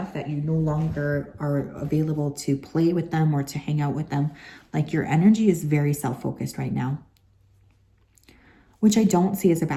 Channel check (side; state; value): both; identical; correlation 1.00